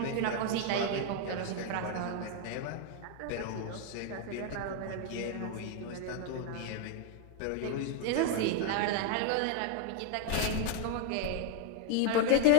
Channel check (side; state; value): both; different; correlation 0.00